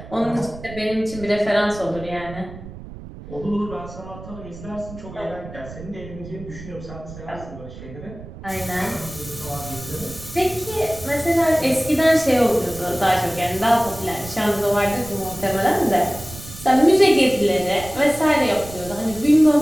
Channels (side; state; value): right; noise; rumble, 14 dB below the sound